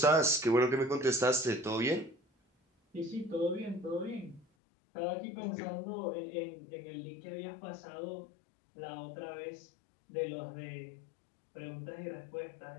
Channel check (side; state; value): right; drops out; at 4.5 s